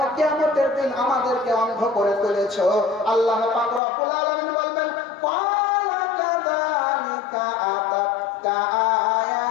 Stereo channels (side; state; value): right; drops out; at 3.8 s